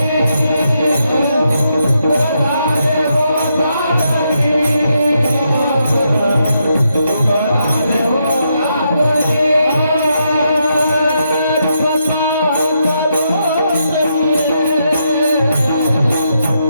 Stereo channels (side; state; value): both; inverted; correlation -0.80